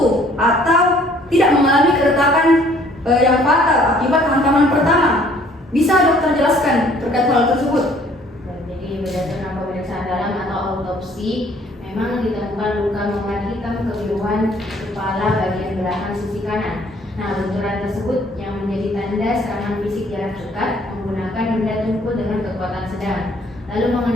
atau tidak mengalami keretakan yang fatal akibat hantaman pertama. Bisa dokter jelaskan terkait hal tersebut? Jadi berdasarkan pemeriksaan dalam atau autopsi, memang ditemukan luka memar hitam kebiruan kepala bagian belakang sisi kanan. Nah, benturan tersebut yang menjadi tanda serangan fisik jarak dekat menggunakan benda tumpul dengan kekuatan sedang. Lalu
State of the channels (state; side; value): normal; both; correlation 0.59